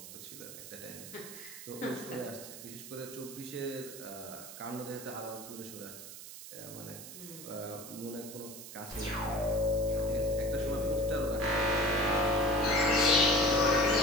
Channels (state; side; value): noise; right; hiss, 13 dB below the sound